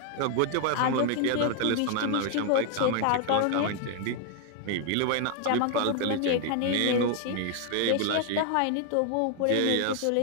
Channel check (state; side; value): different; both; correlation 0.00